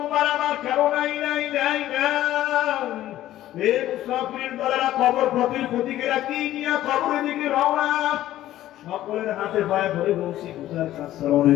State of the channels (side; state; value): right; quieter; 13.8 dB